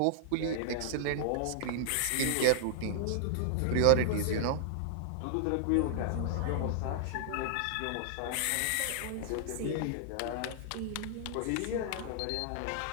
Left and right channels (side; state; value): both; different; correlation -0.01